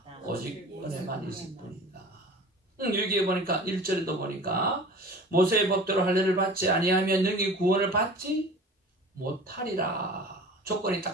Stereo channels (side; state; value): both; normal; correlation 0.41